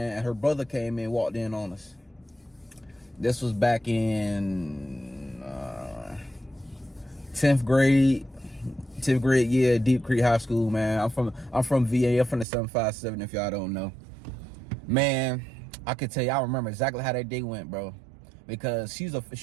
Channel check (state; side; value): drops out; left; at 12.5 s